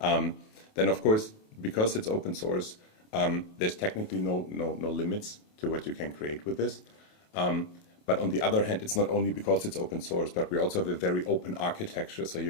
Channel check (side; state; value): right; late; 28 ms